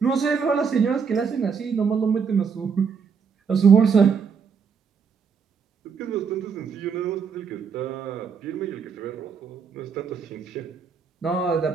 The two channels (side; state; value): left; quieter; 6.1 dB